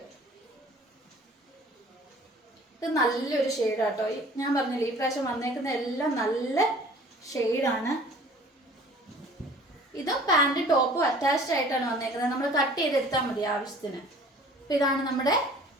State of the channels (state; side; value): normal; both; correlation 0.49